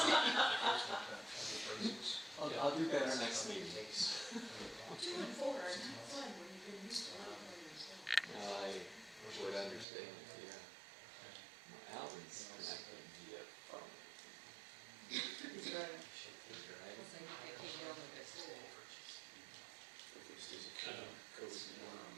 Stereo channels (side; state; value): left; drops out; at 9.9 s